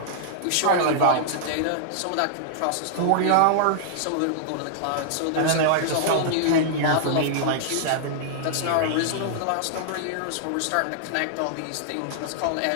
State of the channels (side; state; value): both; different; correlation -0.01